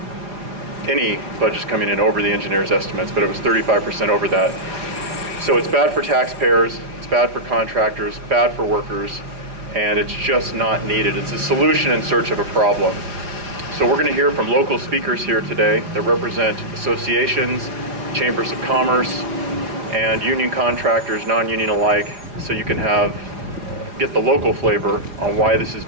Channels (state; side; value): late; left; 4.8 ms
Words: any budgets coming in over the engineer's estimates, but it was 35% over that. So it's bad for taxpayers, it's bad for contractors, bad for workers, and it's just not needed. It's a solution in search of a problem. So we're going to hear from local speakers here today that represent associations, chambers of commerce, and union contractors, non-union alike, so you can get the local flavor on why this is